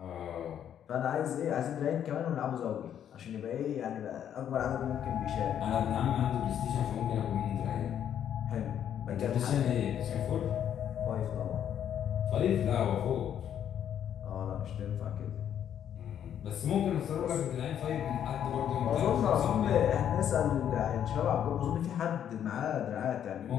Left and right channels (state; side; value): quieter; right; 9.6 dB